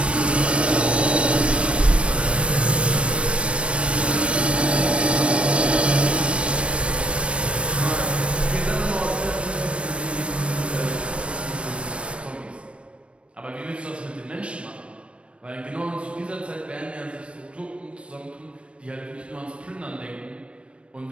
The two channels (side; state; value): left; late; 0.060 ms